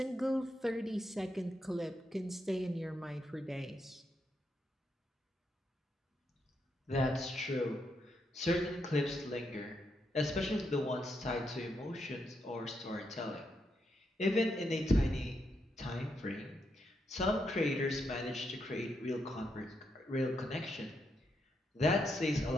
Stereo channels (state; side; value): normal; both; correlation 0.81